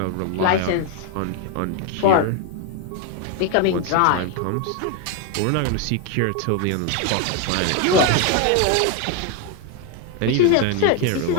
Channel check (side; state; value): both; different; correlation 0.01